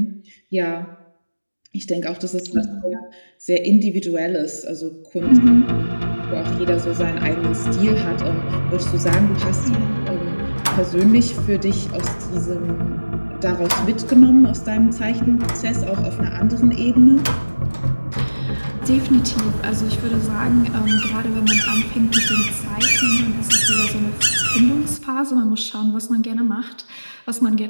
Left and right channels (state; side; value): inverted; both; correlation -1.00